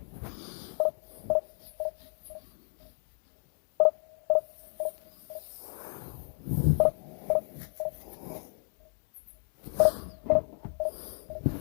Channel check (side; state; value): right; silent; digital silence